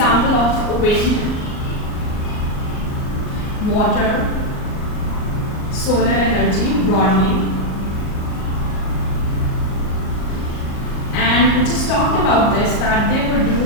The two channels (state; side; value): late; right; 38 ms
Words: of wind, water, solar energy broadly. And we just talked about this, that they